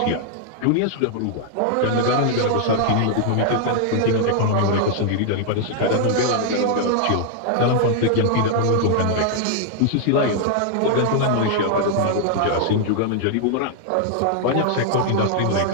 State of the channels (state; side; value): different; both; correlation 0.00